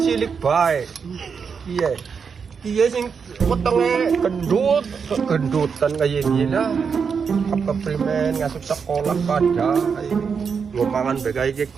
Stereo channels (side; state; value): left; quieter; 6.1 dB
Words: bae iya sing wetenge gendutan kayak gini lah apa primen ngasuk sekolah pada ngomangan bae